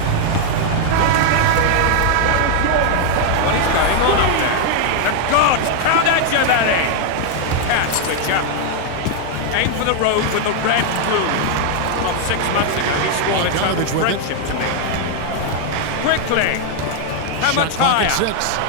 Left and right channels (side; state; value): both; different; correlation 0.00